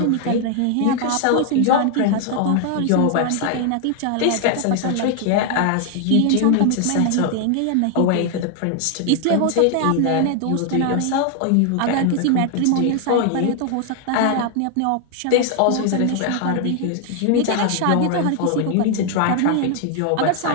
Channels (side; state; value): both; different; correlation 0.00